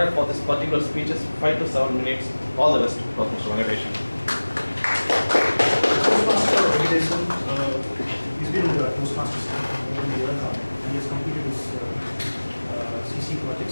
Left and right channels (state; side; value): inverted; both; correlation -1.00